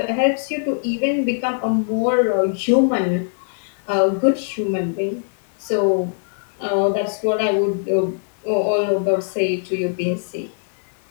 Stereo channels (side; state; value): right; silent; digital silence